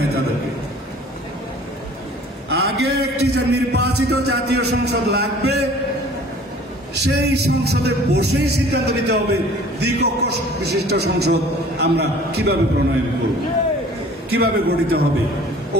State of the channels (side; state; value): both; normal; correlation 0.49